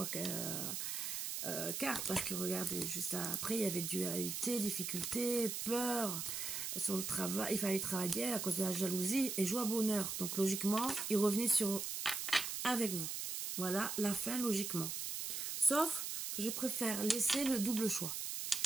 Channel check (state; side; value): noise; right; hiss, 3 dB below the sound